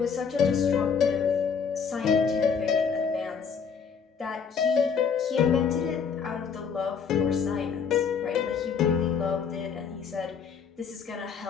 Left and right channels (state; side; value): quieter; right; 6.4 dB